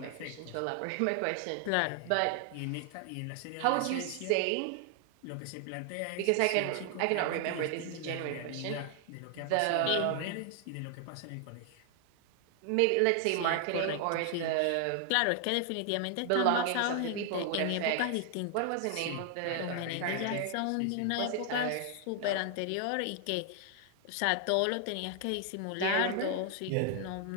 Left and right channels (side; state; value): both; different; correlation 0.00